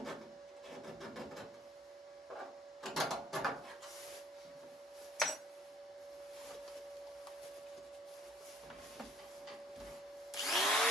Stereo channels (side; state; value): both; normal; correlation 0.60